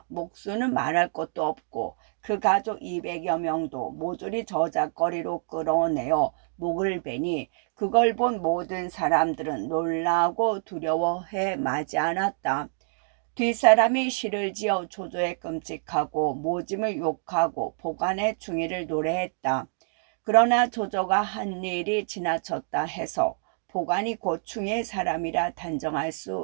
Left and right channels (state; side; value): silent; left; digital silence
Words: 목수는 말할 것도 없고 그 가족 200여 명도 모조리 저작거리로 끌어내어 목을 베니 그걸 본 모든 사람들은 놀라고 두려워해 마지 않았다. 뒷사람이 시를 지어 조조의 끔찍하고 모짐을 욕하고 보관의 중의를 노래했다. 그러나 조조가 한 일이 지나쳤다 해서 보관이 고충의 사람이라 단정할